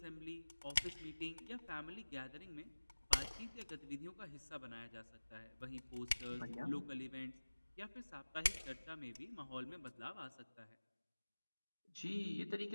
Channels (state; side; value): inverted; both; correlation -1.00